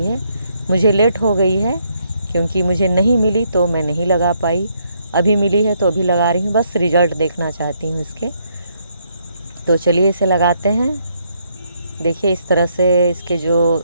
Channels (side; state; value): both; inverted; correlation -0.73